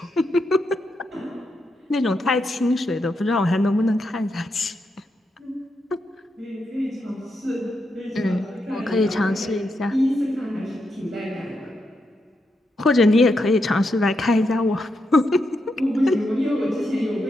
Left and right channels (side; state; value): both; normal; correlation 0.83